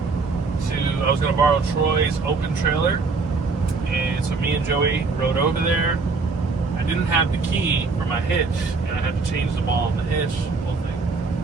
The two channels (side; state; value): left; quieter; 4.2 dB